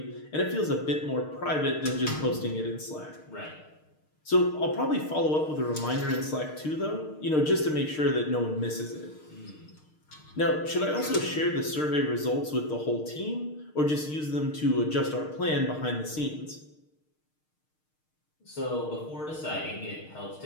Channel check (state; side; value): late; right; 6.5 ms